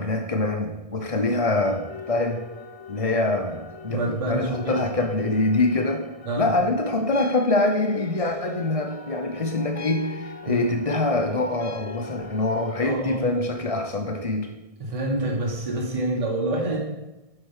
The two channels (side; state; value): left; late; 1.6 ms